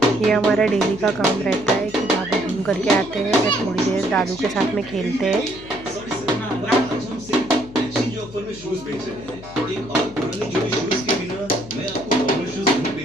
ये हमारा डेली का काम रहता है कि बाबू घूम करके आते हैं, फिर थोड़ी देर दादू के साथ में खेलते हैं।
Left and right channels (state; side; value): noise; left; hum, 17 dB below the sound